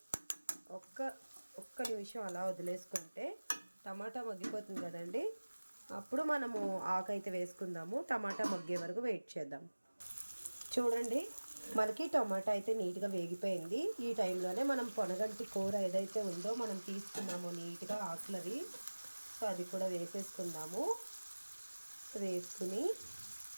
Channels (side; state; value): both; inverted; correlation -1.00